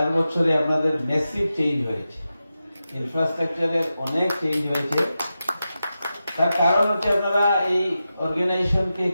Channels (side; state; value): both; inverted; correlation -0.91